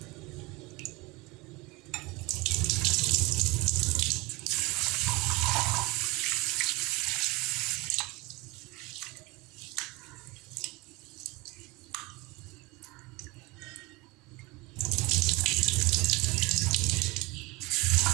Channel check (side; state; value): left; quieter; 24.0 dB